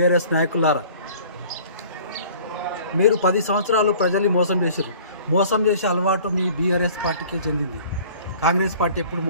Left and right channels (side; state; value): both; inverted; correlation -0.49